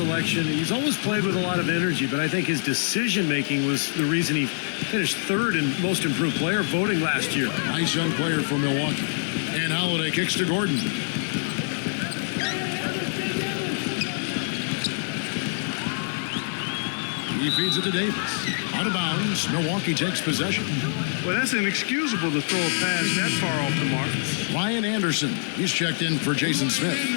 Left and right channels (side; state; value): right; silent; digital silence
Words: He's always played with a lot of energy, but I think his decision-making was the reason he finished third in most improved player voting last year. Nice young player for Milwaukee. And Holiday kicks to Gordon. He feeds it to Davis. Out of bounds. Milwaukee takes possession. Well, that's inexcusable to throw a pass that far off the mark. Ryan Anderson. He's checked in for Jason Smith.